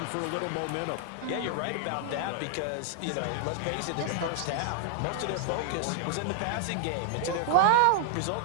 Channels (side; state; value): both; different; correlation 0.00